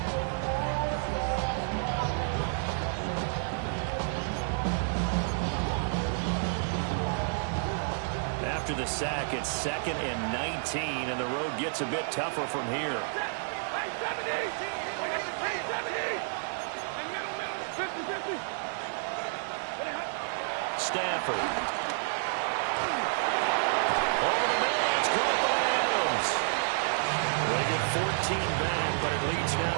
After the sack, it's 2nd and 19, and the road gets a bit tougher from here. Stafford. Over the middle, that's caught by Adams. They get 14 back, but it leads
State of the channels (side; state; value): left; silent; digital silence